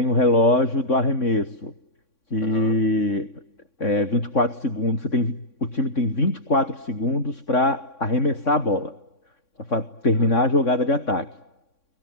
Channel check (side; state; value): right; late; 3.6 ms